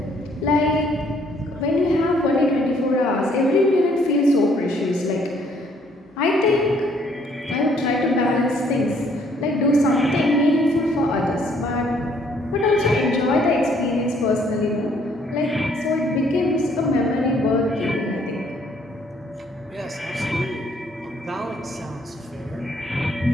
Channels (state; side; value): normal; both; correlation 0.64